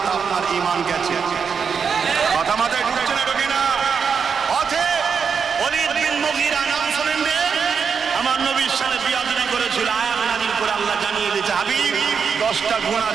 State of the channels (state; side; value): quieter; left; 6.2 dB